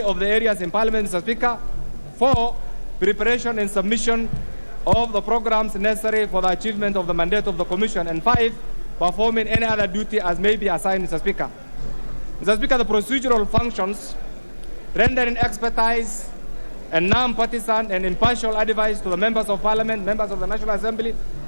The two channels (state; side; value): inverted; both; correlation -1.00